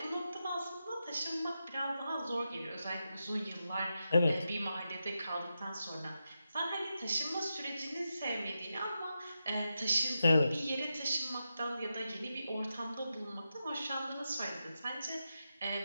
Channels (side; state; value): both; inverted; correlation -0.88